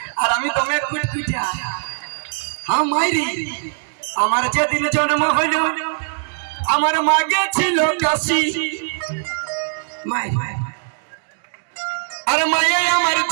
আর আমি তোমার কুটকুটা। হ্যাঁ মাইরি, আমার যেদিন জন্ম হইল আমার মাগে ছিল কাশি। আর মায়ে আমার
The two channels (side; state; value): left; silent; digital silence